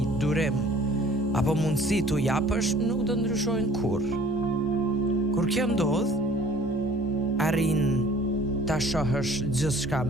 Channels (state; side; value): normal; both; correlation 0.51